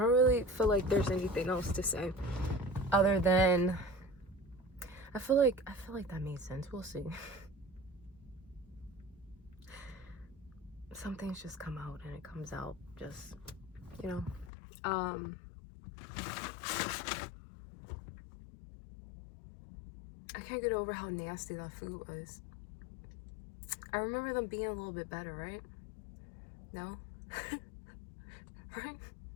really feel like there's anything else to say other than I feel like that made sense. We'll see. Some things just come out and it comes out just, you know. I can't get over how nasty that food was. I remember them being a little bit better, right? No? Right?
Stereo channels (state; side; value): drops out; right; at 14.5 s